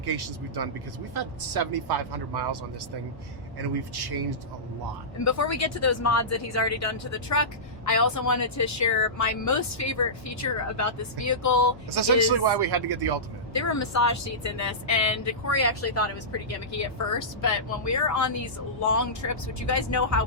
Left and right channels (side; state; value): both; normal; correlation -0.18